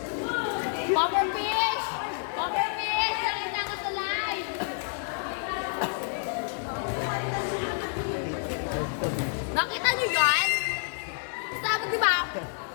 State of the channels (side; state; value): right; silent; 59 dB below the other